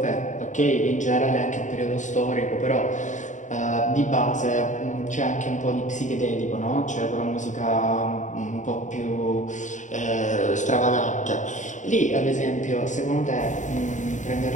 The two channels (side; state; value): right; late; 0.36 ms